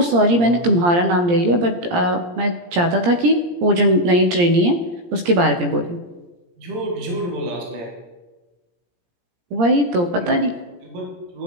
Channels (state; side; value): late; left; 17 ms